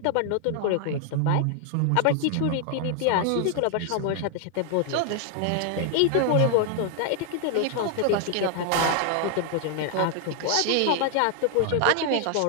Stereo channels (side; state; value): both; different; correlation 0.00